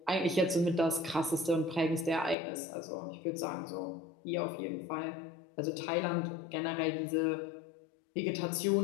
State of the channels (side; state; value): right; drops out; at 2.4 s